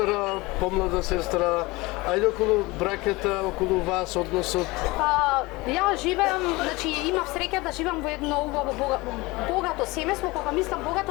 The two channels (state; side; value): quieter; right; 22.5 dB